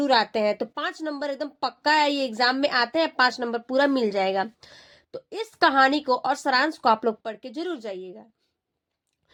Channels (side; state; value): both; identical; correlation 1.00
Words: आते हैं। तो 5 नंबर एकदम पक्का है, ये एग्जाम में आते हैं, 5 नंबर पूरा मिल जाएगा। तो इस कहानी को और सारांश को आप लोग पढ़ के जरूर जाइएगा।